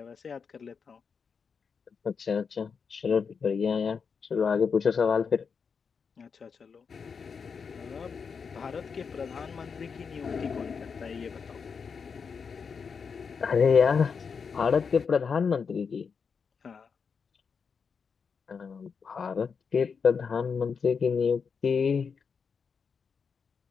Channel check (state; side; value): quieter; right; 5.9 dB